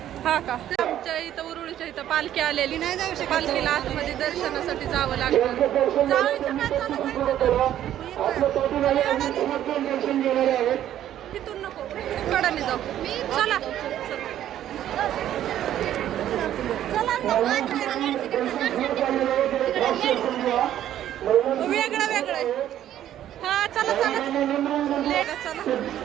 हा का. आमच्या इथं उरुळीच्या इथं पालखी आलेली नाही जाऊ शकत. पालखीला आतमध्ये दर्शनासाठी जावं लागतं. जायचं काय तिथून नको कडाने जाऊ. चला वेगळं वेगळं. हा चला चला चला.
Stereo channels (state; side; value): quieter; left; 11.7 dB